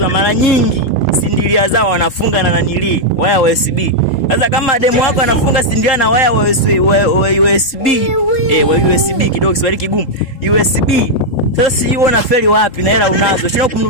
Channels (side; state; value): right; late; 3.8 ms